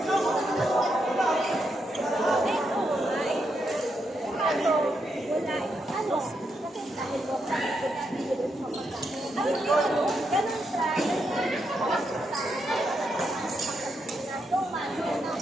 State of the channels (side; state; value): both; normal; correlation 0.81